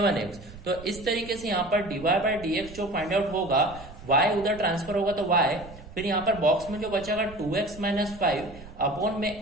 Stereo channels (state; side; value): noise; right; rumble, 17 dB below the sound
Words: तो इस तरीके से यहाँ पर dy बाय dx जो फाइंड आउट होगा, y उधर ट्रांसफर होगा तो y, फिर यहाँ पर बॉक्स में जो बचेगा 2x माइनस 5 अपॉन